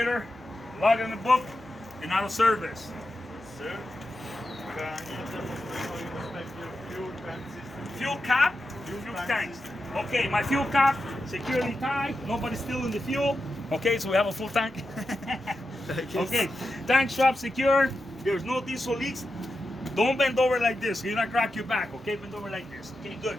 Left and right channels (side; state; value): both; normal; correlation 0.89